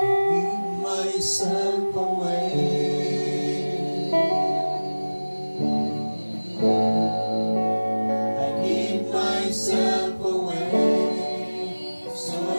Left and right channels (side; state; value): both; inverted; correlation -1.00